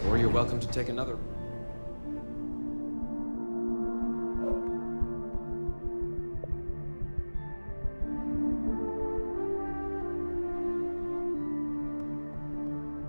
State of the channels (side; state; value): both; inverted; correlation -1.00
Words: Or you're welcome to take another.